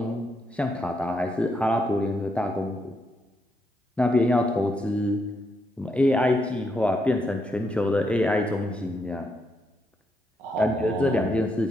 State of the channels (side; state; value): both; normal; correlation 0.79